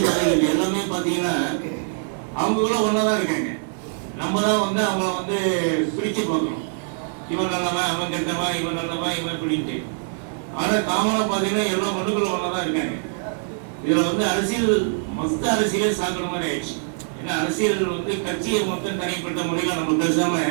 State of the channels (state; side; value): silent; left; 63 dB below the other